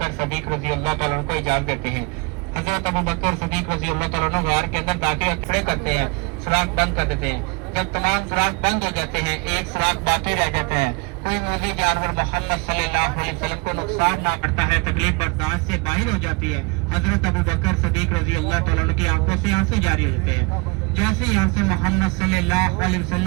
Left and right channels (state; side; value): quieter; left; 28.0 dB